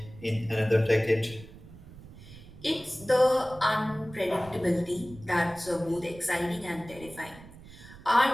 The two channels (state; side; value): noise; right; rumble, 18 dB below the sound